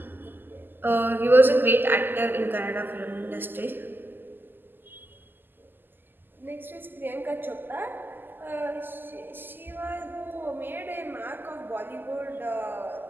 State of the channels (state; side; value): late; left; 0.093 ms